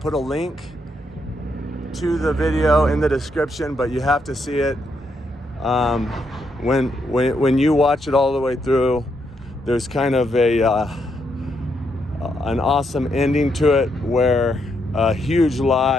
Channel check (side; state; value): both; normal; correlation 0.78